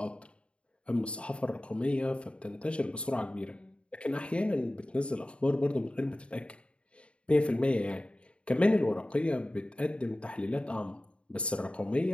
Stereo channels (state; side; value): late; right; 0.058 ms